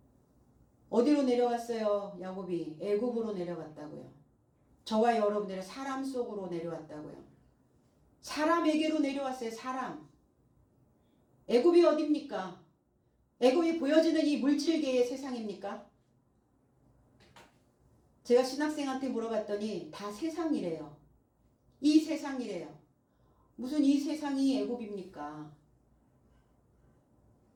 어디로 내려왔어요? 야곱이 애굽으로 내려갔다고요. 저와 여러분들의 사람 속으로 내려왔다고요. 사람에게로 내려왔어요. 사람. 애굽이 어딥니까? 애굽이 보여지는 이 물질계의 세상입니까? 제가 신학생한테 물어봤더니 다 세상이래요. 이 세상이래요. 무슨 이 세상이 애굽입니까?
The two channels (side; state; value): both; identical; correlation 1.00